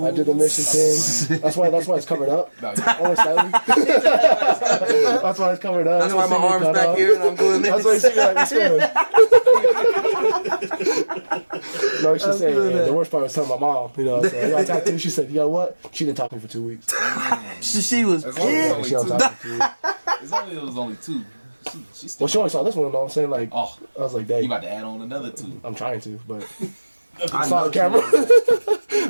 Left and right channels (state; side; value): inverted; both; correlation -1.00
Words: mission thing. That's why it's covered up. Only slightly. That's why it's covered up. That's why my arm's back here and I'm doing this. That's why you see me like this. No, she said, the worst part was telling my mom, you know, so I got tattooed. She said, you know what? She didn't talk to me for 2 weeks. she was pissed. She don't talk to me. It was only 2. She only saw this one, though. I'm saying, like, I was like, dang. You about to add on another 2. I'm trying to, but it's not on camera.